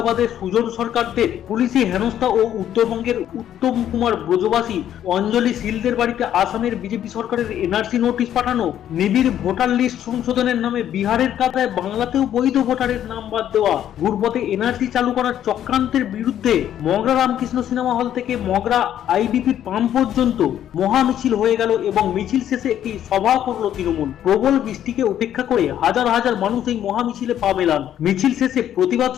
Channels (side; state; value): right; quieter; 10.8 dB